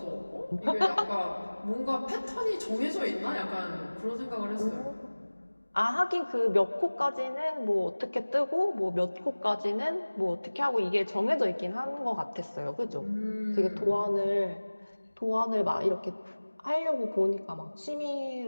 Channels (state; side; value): inverted; both; correlation -1.00